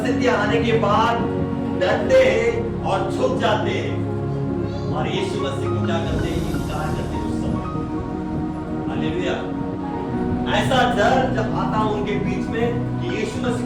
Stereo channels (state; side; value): identical; both; correlation 1.00